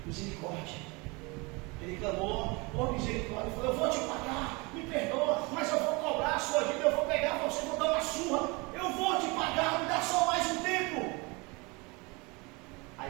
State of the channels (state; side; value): quieter; left; 27.0 dB